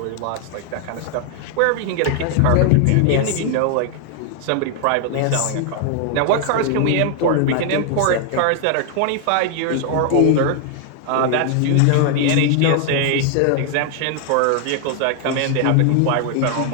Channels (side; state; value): both; different; correlation 0.00